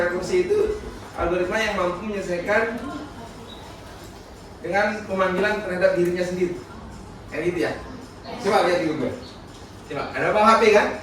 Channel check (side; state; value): both; identical; correlation 1.00